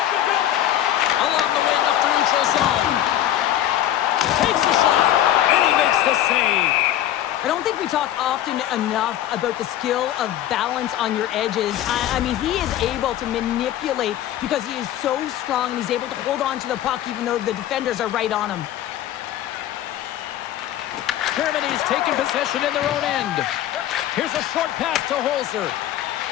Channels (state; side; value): quieter; right; 12.2 dB